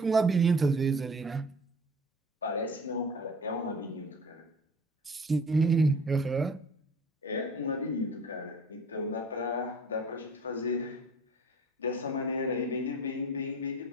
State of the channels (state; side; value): normal; both; correlation 0.45